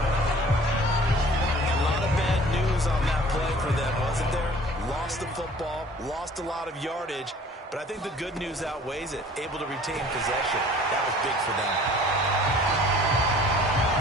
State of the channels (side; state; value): both; normal; correlation 0.50